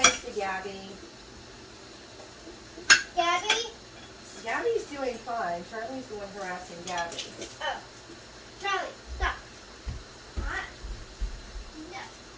to Gabby. Gabby? Gabby's doing fine. Charlie's the one harassing Gabby. Oh. Charlie, stop. What? No.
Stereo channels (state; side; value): identical; both; correlation 1.00